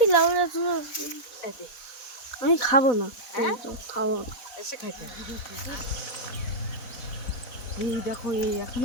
লাউরা তুমি, আমি খাবো না, খাবো না। এসে খাইতে হবে। এই দেখো এই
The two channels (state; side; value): late; right; 4.1 ms